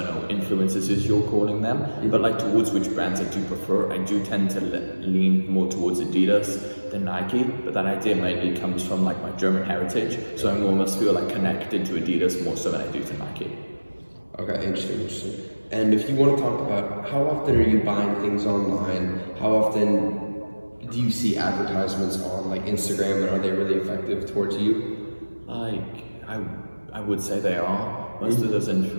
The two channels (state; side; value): inverted; both; correlation -1.00